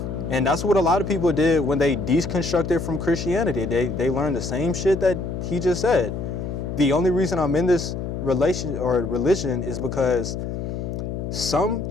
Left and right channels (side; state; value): left; noise; hum, 5 dB below the sound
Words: And that's what a lot of people did when they deconstructed from Christianity. They learned the same shit that he just said. The only reason I'm in this religion is because some